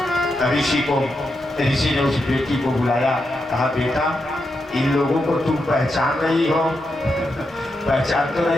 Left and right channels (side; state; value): both; normal; correlation 0.85